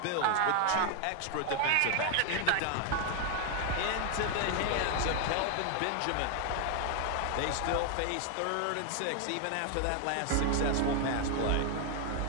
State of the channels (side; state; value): both; different; correlation 0.01